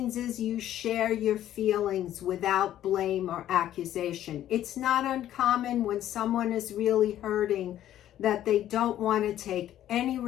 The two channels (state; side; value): quieter; right; 12.1 dB